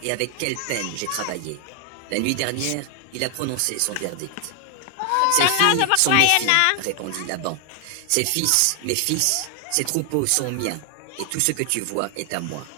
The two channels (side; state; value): both; different; correlation 0.00